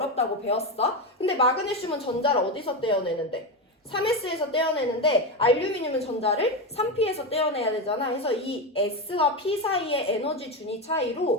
배웠어. 근데 마그네슘은 전자를 어디서 떼어내는데? 3s에서 떼어내는데 알루미늄은 전자를 3p에서 떼어내야 되잖아. 그래서 이 s와 p 사이의 에너지 준위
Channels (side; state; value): both; normal; correlation 0.14